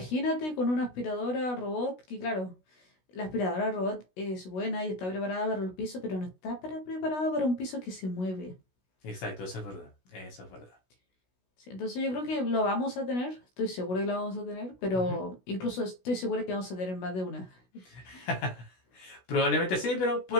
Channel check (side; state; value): right; late; 16 ms